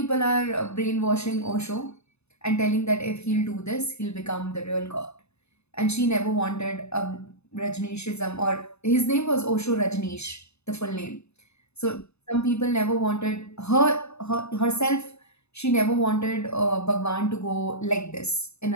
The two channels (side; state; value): right; late; 0.80 ms